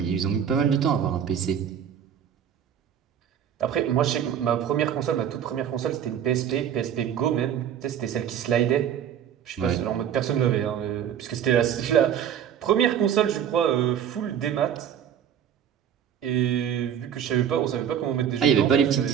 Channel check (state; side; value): quieter; left; 9.1 dB